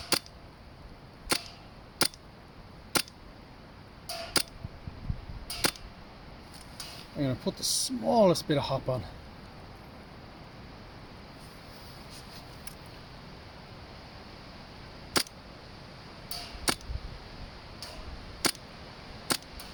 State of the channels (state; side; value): identical; both; correlation 1.00